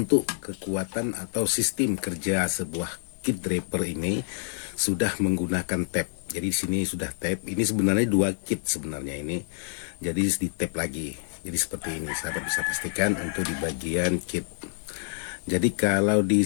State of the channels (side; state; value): right; silent; digital silence